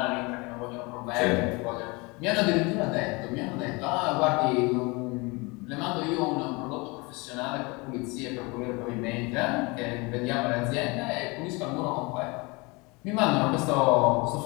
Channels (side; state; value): right; quieter; 26.8 dB